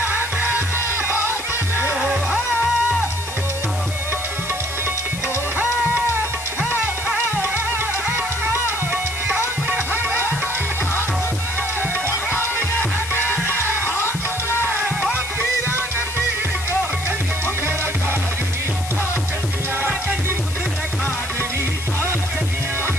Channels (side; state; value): left; noise; hiss, 10 dB below the sound